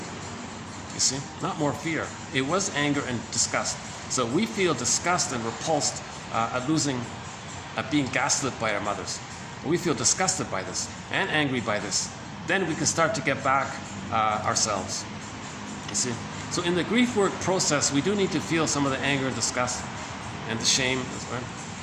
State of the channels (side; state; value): both; identical; correlation 1.00